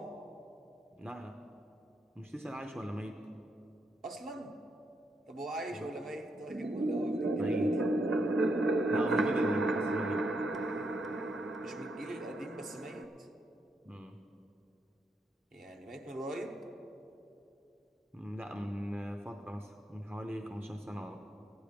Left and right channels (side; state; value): both; normal; correlation 0.80